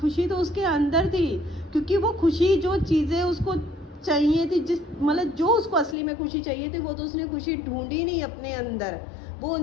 तो उसके अंदर थी, क्योंकि वो खुशी जो चीज़ें उसको चाहिए थी, जिस मतलब जो उसको असली में खुशी चाहिए थी, वो तो उसने खुशी ढूंढी नहीं अपने अंदर। वो उन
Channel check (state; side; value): drops out; right; at 6.0 s